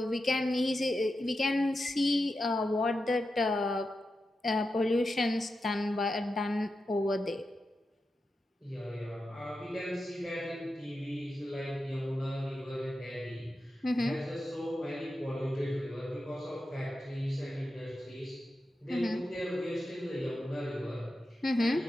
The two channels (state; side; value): normal; both; correlation 0.90